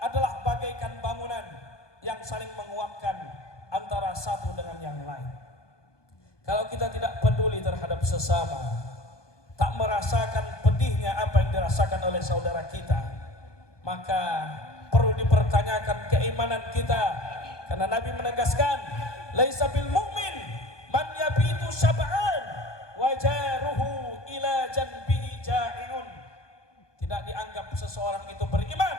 bagaikan bangunan yang saling menguatkan antara satu dengan yang lain. Kalau kita tidak peduli terhadap sesama, tak merasakan pedihnya apa yang dirasakan oleh saudara kita, maka perlu dipertanyakan keimanan kita. Karena Nabi menegaskan, laisa bil mu'min man yabitu syab'an wa jaruhu ila janbihi ja'iun. Tidak dianggap seseorang itu beriman,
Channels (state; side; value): late; right; 1.2 ms